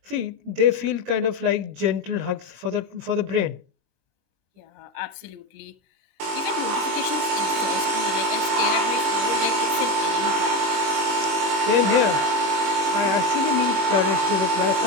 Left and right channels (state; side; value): late; left; 21 ms